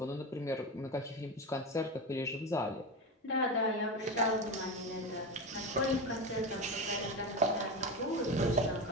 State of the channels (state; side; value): normal; both; correlation 0.19